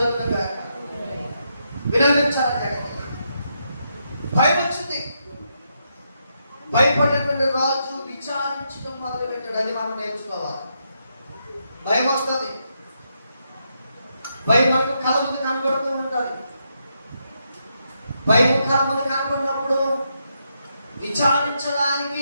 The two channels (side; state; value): both; inverted; correlation -0.81